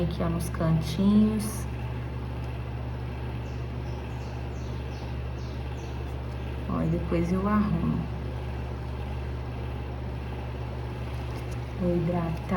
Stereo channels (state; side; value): identical; both; correlation 1.00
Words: aqui, ó, nos cantinhos. Ó, e depois eu arrumo. Vou